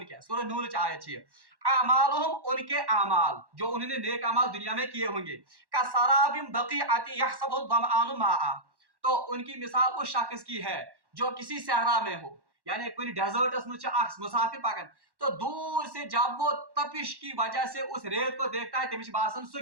किया, सूरह नूर की आयत है, अमालुहुम उनके अमाल जो उन्होंने नेक अमाल दुनिया में किए होंगे, का सराबिन बक़ीअतिन यहसबुहु ज़मआनु माआ, तो उनकी मिसाल उस शख्स की है जो किसी सहरा में हो, यानी कोई डेजर्टस में मुसाफिर पकन, तो दूर से जब वो तपिश की वजह से उस रेत को देखता है, तमिश बासन सु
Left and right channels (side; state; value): left; late; 1.1 ms